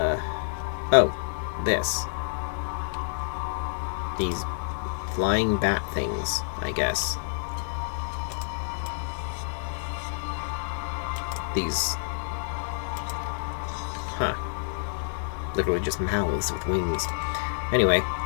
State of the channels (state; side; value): silent; right; 59 dB below the other